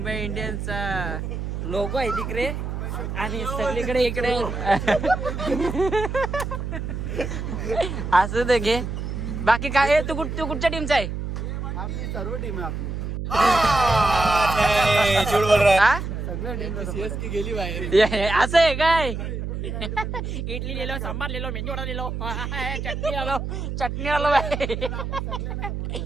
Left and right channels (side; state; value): right; noise; hum, 4 dB below the sound